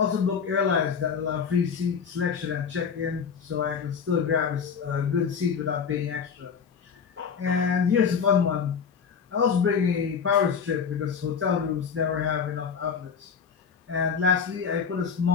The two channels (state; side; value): quieter; right; 6.5 dB